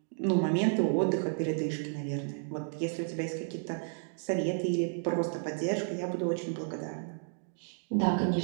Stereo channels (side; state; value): left; silent; digital silence